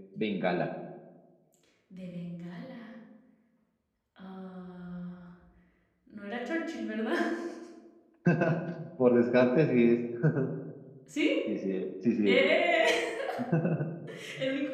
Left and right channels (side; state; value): both; identical; correlation 1.00